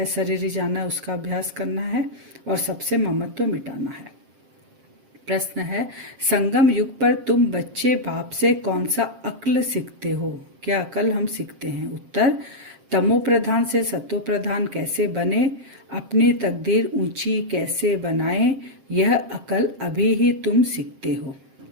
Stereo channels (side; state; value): left; late; 7.5 ms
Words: जाना है, उसका अभ्यास करना है, और सबसे ममत्व मिटाना है। प्रश्न है, संगम युग पर तुम बच्चे बाप से कौन सा अक्ल सीखते हो? क्या अकल हम सीखते हैं? उत्तर, तमो प्रधान से सतो प्रधान कैसे बने, अपनी तकदीर ऊंची कैसे बनाएं, यह अकल अभी ही तुम सीखते हो।